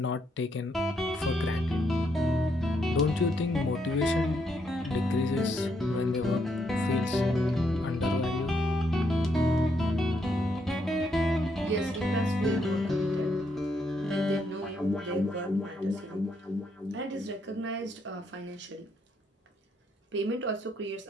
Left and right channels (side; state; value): both; normal; correlation 0.76